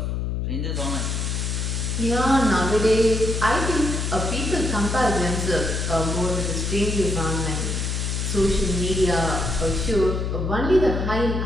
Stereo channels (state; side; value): noise; left; hum, 1 dB below the sound